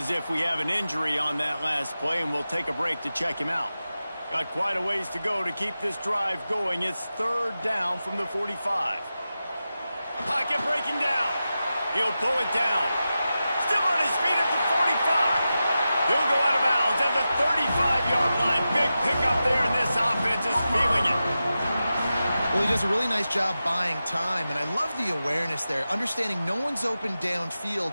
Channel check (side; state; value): both; inverted; correlation -0.92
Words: if we have an injury on that last play, and we'll take a break to check him out. Got quite a ways to go to keep this drive going. It's third down from the 45. Pocket breaking down. He'll pull it down. Still on his feet at the 45. He'll go out of bounds at the 35-yard line. Big pickup there, and this offense is feeling it. Well, he does a really nice job buying time, and I love the awareness there, understanding no one's open downfield,